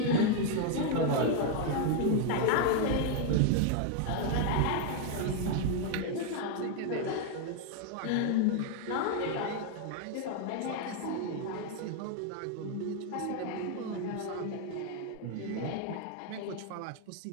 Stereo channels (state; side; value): different; both; correlation 0.01